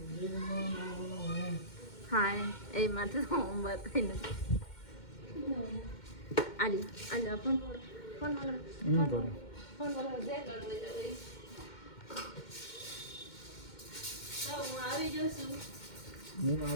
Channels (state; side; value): late; right; 2.1 ms